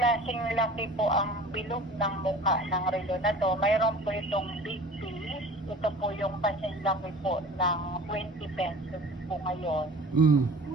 laki po ang bilog ng mukha ng relo na to. Mayroon po itong big piece. Ito po yung kasing laki po ng 20 pesos po ngayon. Mm.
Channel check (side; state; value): both; normal; correlation 0.42